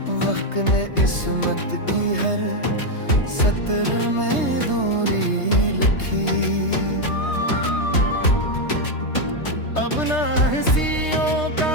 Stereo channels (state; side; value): late; right; 3.3 ms